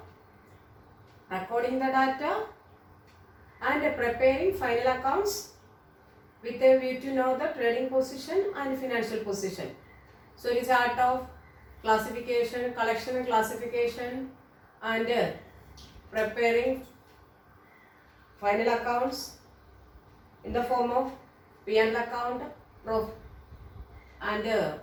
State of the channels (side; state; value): both; identical; correlation 1.00